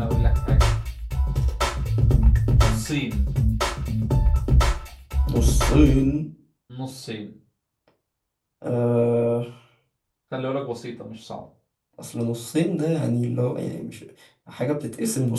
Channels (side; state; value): both; identical; correlation 1.00